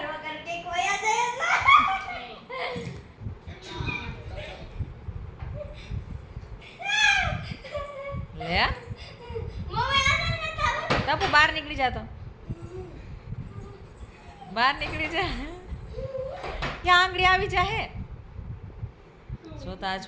કર કે કોઈ આ જાય ટપુ બહાર નીકળી જા તો બહાર નીકળી જા ત્યાં આંગળી આવી જાહે જોતા આ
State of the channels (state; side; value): identical; both; correlation 1.00